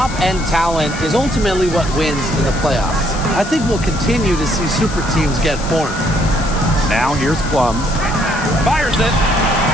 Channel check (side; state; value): left; noise; hiss, 13 dB below the sound